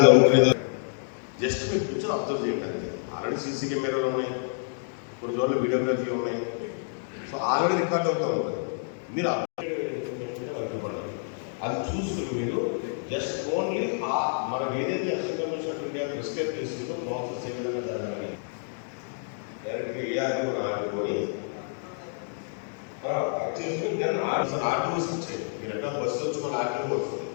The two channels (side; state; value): right; silent; digital silence